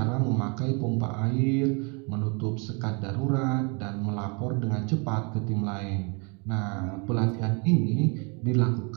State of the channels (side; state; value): left; quieter; 33.0 dB